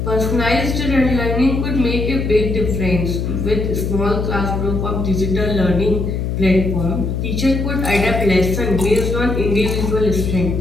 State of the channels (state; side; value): noise; left; hum, 2 dB below the sound